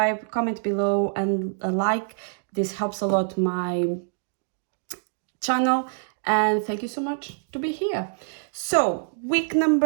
comment below and a like. This helps a lot my channel, and thank you so much to be here. So week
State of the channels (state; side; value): silent; left; digital silence